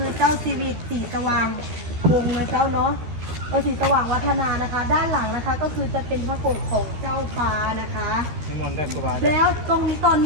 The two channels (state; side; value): late; left; 13 ms